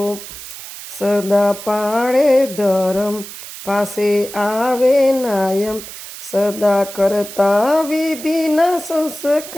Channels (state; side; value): noise; right; hiss, 12 dB below the sound